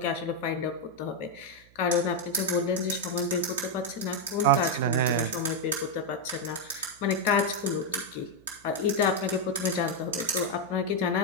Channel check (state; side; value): noise; right; hum, 28 dB below the sound